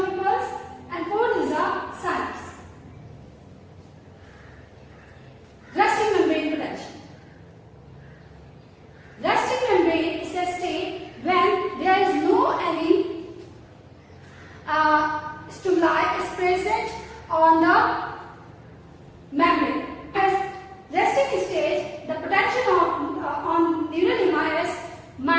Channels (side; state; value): both; identical; correlation 1.00